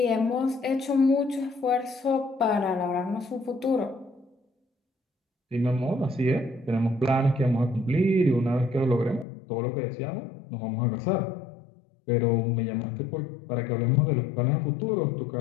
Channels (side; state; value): right; drops out; at 9.2 s